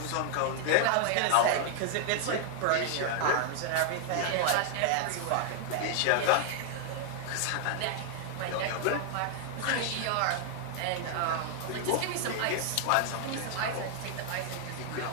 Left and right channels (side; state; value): both; different; correlation 0.00